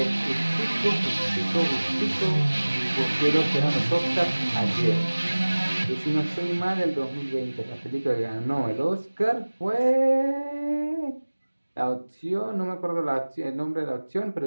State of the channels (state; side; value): inverted; both; correlation -1.00